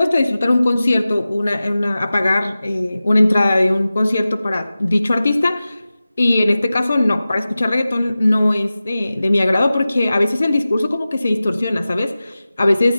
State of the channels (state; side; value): inverted; both; correlation -0.96